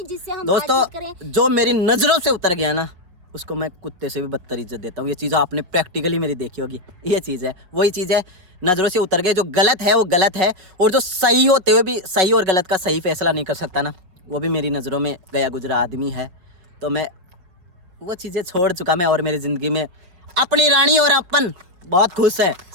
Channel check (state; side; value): late; left; 5.4 ms